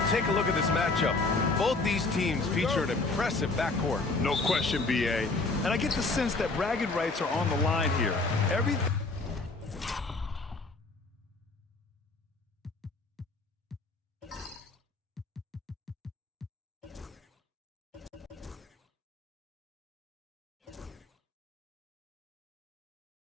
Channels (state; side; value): quieter; right; 3.5 dB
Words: take a look at this matchup, both these teams feature an impressive backcourt. No question, B.A. And I get the sense that bragging rights are on the line here. Everything.